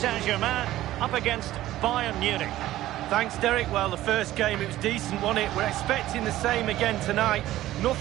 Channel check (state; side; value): quieter; left; 14.7 dB